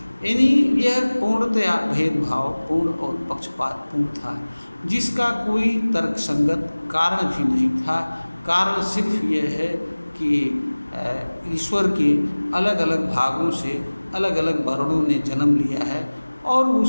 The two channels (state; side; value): inverted; both; correlation -1.00